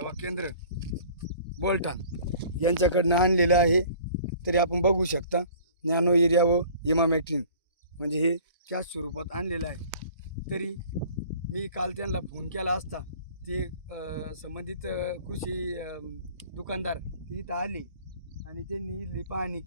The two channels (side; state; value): both; inverted; correlation -0.49